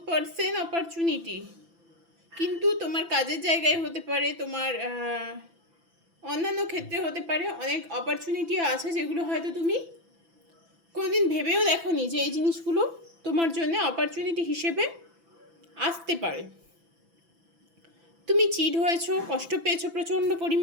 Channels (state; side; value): late; left; 6.0 ms